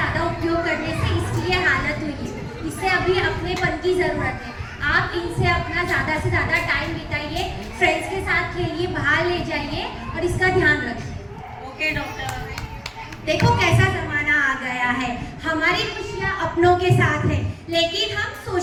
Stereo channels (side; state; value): both; identical; correlation 1.00